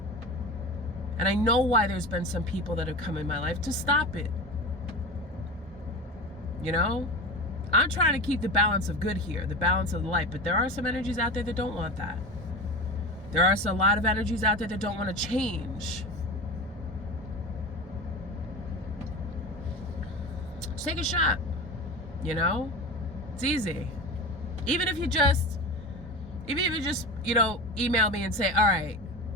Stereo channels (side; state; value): both; normal; correlation 0.29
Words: And I know why there's been some people that have come in my life to stop it. You know? I'm trying to keep the balance of good here, the balance of the light, but there are some energies out there that don't want that. There are a lot of energies out there that don't want to change. Just take a shot, you know? It's easy. Even if you just, you know, email me and say, all right,